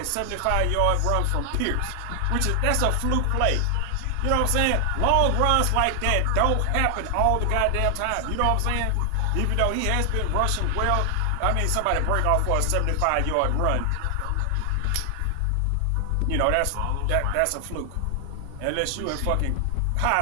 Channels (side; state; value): both; different; correlation 0.00